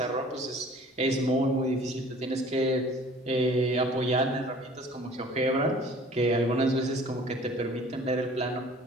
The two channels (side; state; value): both; normal; correlation 0.50